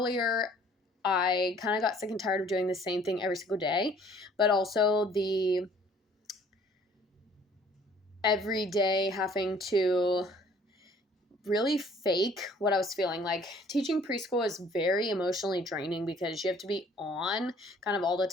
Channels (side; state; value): both; normal; correlation 0.57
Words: I kind of got sick and tired of doing the same thing every single day, but also the every day having to really fake what I was feeling. Like, teaching preschool is very emotionally draining because you have to be on kind of all the